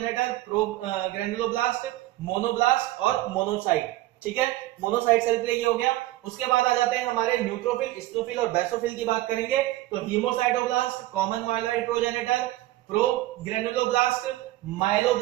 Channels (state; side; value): quieter; left; 16.6 dB